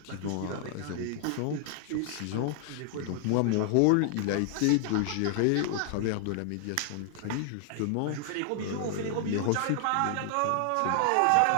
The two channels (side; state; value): both; different; correlation 0.00